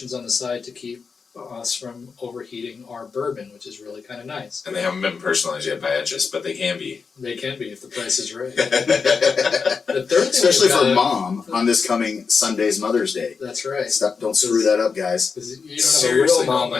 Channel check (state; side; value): quieter; right; 5.3 dB